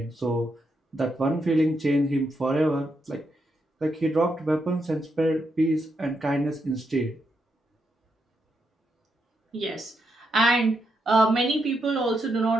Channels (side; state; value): both; normal; correlation 0.82